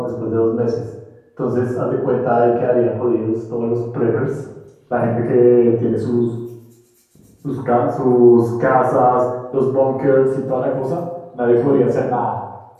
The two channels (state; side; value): identical; both; correlation 1.00